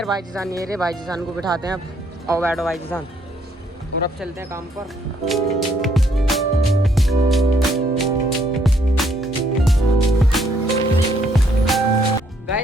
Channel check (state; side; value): normal; both; correlation 0.69